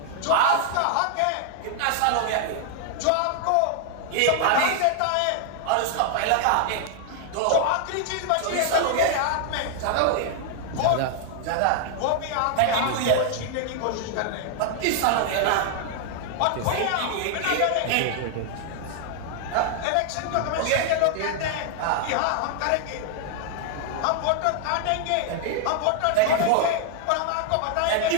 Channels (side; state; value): both; different; correlation 0.00